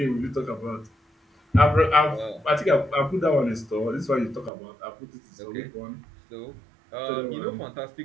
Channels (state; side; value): drops out; left; at 4.5 s